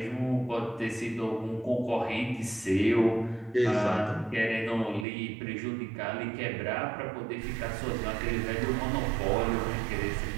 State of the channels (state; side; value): drops out; left; at 5.1 s